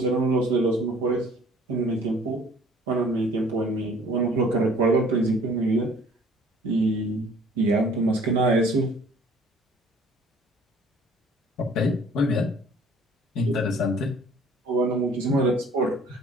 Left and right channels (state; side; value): normal; both; correlation 0.53